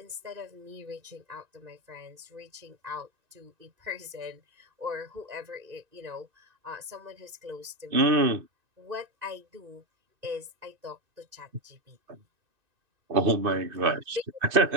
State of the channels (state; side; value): late; left; 2.6 ms